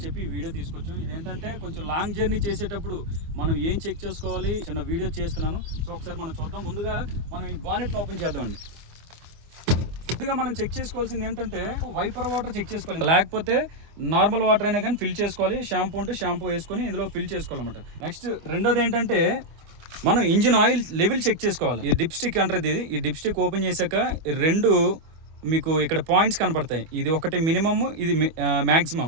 చెప్పి ఈ వీడియో తీసుకొచ్చాం. ఇదేంటంటే కొంచెం లాంగ్ జర్నీ చేసేటప్పుడు మనం ఏం చెక్ చేసుకోవాలి చిన్న వీడియో చేస్తున్నాను. సో ఒకసారి మనం చూద్దాం. ముందుగా మనం ఈ బానెట్ని ఓపెన్ చేద్దామండి. ముందుగా మనం చెక్ చేసుకోవాల్సింది ఏంటంటే, వైపర్ వాటర్ చెక్ చేసుకోవాలి, లేకపోతే నార్మల్ వాటర్ అయినా కానీ ఫిల్ చేసుకోవాలి. షాంపూ ఉంటే షాంపూ వేసుకొని ఇందులో ఫిల్ చేసుకోవాలన్నమాట. నెక్స్ట్ రెండోది ఏంటంటే, మనం ఇంజిన్ ఆయిల్ లెవెల్ చెక్ చేసుకోవాలి. ఈ డిప్ స్టిక్ అంటారు. ఈ డిప్ స్టిక్ ఓపెన్ చేశాక రెండు మీకు ఇక్కడ పాయింట్స్ కనపడతాయి. ఇది ఒకటి మినిమమ్, ఇది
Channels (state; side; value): late; left; 25 ms